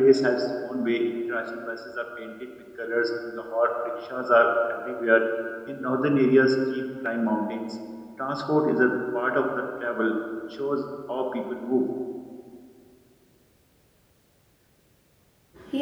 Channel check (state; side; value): identical; both; correlation 1.00